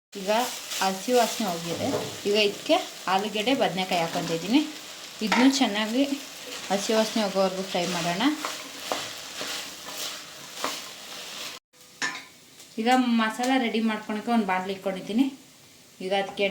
ಈಗ ಹಸಿ ವಾಸನೆ ಹೋಗಿದೆ. ಈಗ ಇದಕ್ಕೆ ಆಲೂಗಡ್ಡೆ, ಬದನೆಕಾಯಿ ಹಾಕ್ಕೊತಿದ್ದೀನಿ. ಇದನ್ನು ಚೆನ್ನಾಗಿ ಹಸಿ ವಾಸನೆ ಹೋಗೋವರೆಗೂ ಫ್ರೈ ಮಾಡೋಣ. ಈಗ ಮಸಾಲ ರೆಡಿ ಮಾಡ್ಕೊಳಕ್ಕೆ ಒಂದು ಬಾಣಲಿ ಇಟ್ಕೊಂಡಿದ್ದೀನಿ. ಈಗ ಅದಕ್ಕೆ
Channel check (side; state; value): both; identical; correlation 1.00